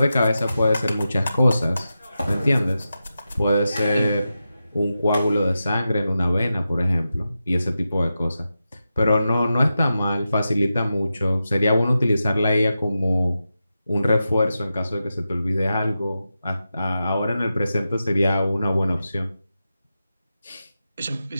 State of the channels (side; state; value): both; inverted; correlation -0.90